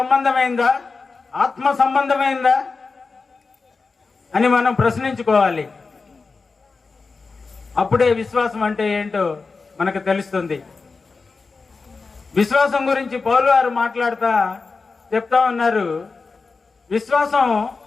ఆత్మ సంబంధమైందా అని మనం ప్రశ్నించుకోవాలి. అప్పుడే విశ్వాసం అంటే ఏంటో మనకు తెలుస్తుంది. విశ్వాసం గురించి పౌలు గారు మాట్లాడుతా చెప్తా ఉన్నారు, విశ్వాసం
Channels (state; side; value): quieter; right; 4.3 dB